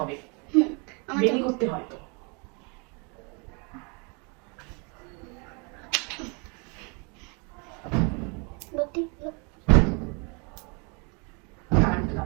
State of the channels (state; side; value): quieter; left; 33.2 dB